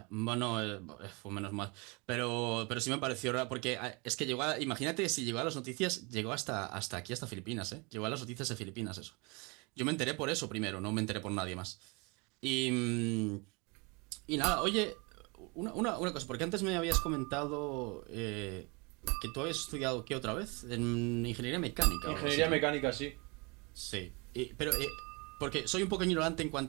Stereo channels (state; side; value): quieter; left; 29.4 dB